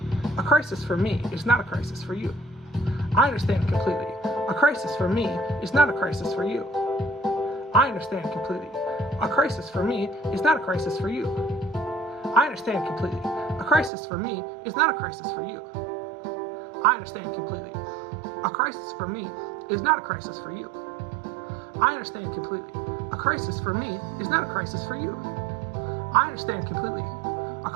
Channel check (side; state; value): left; drops out; at 13.9 s